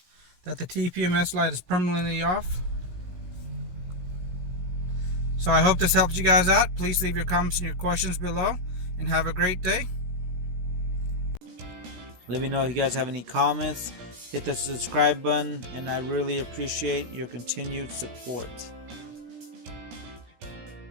that the TPMS light is permanently off. So I hope this helped you guys out. Please leave your comments and your questions below, and have a great day. Let me know if you guys have any comments. Hit the subscribe button, and I really appreciate your continued support.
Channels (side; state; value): left; late; 17 ms